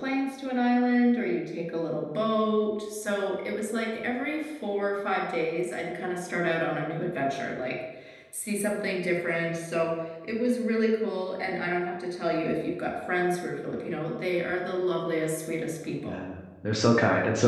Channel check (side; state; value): both; identical; correlation 1.00